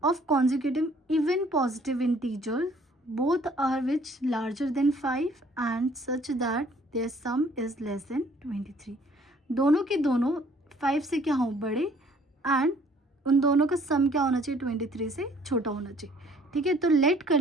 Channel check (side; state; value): both; normal; correlation 0.59